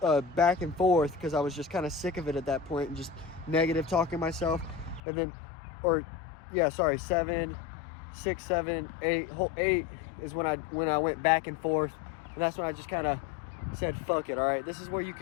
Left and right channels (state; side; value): drops out; right; at 5.0 s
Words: back and forth because I was just kind of sick of it at that point and just negative talking myself. And then 7, 6, 7, 8. Hole 8 is when I went back and forth, and that's when I just kind of said, "Fuck it, all right. This is where you